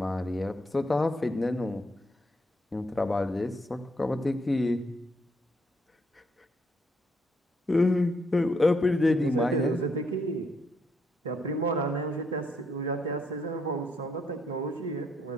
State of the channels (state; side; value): normal; both; correlation 0.74